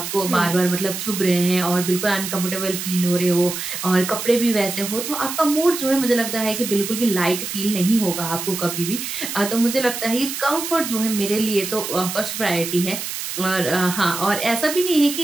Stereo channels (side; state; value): right; noise; hiss, 6 dB below the sound